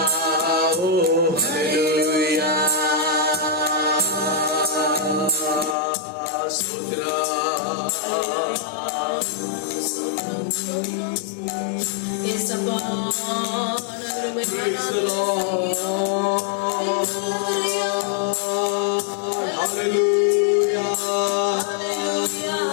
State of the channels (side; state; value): right; drops out; at 5.8 s